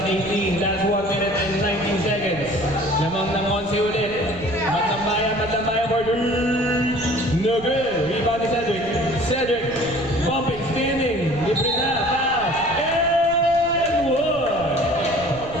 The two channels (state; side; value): noise; right; rumble, 16 dB below the sound